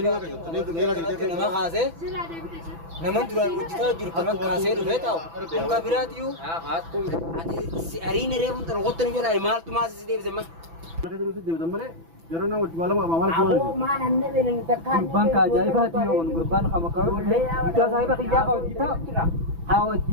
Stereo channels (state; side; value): late; left; 6.0 ms